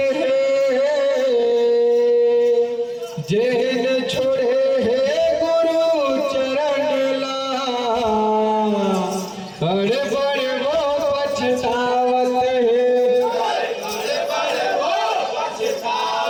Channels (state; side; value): identical; both; correlation 1.00